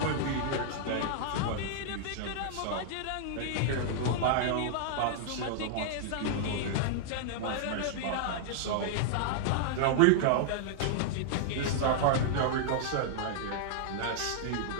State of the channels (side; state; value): both; different; correlation -0.01